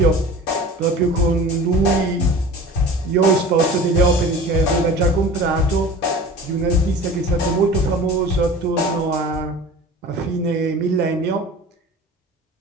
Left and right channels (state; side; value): normal; both; correlation 0.39